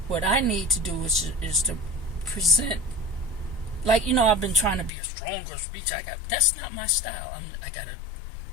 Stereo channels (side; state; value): right; drops out; at 4.9 s